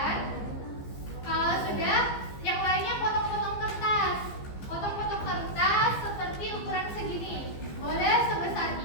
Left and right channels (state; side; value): late; right; 15 ms